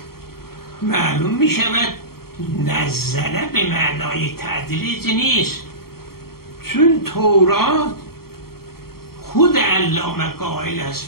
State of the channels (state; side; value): late; right; 0.94 ms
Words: معلوم می شود نزله به معنای تدریج نیست، چون تورات خود علامه قائل است